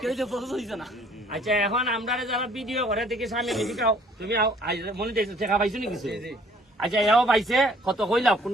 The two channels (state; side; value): normal; both; correlation 0.58